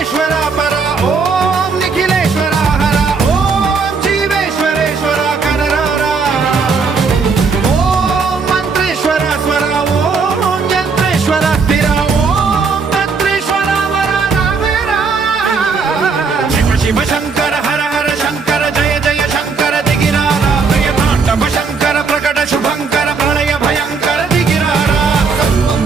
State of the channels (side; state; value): left; quieter; 4.9 dB